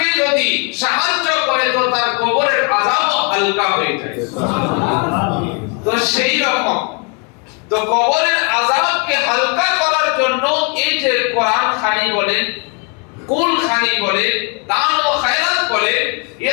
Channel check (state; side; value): quieter; right; 33.6 dB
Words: যদি সাহায্য করে, তো তার কবরের আযাব হালকা হয়ে যায়। তো সেই রকম তো কবরের আযাবকে হালকা করার জন্য এই যে কোরআন খানি বলেন, কুল খানি বলেন, দান ও খায়রাত বলেন, এ